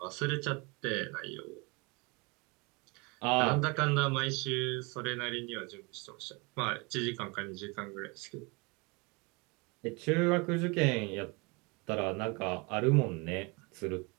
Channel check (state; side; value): quieter; left; 28.2 dB